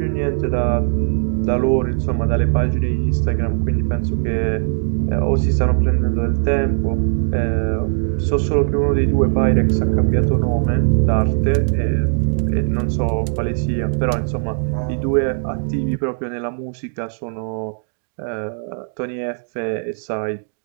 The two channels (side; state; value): left; silent; digital silence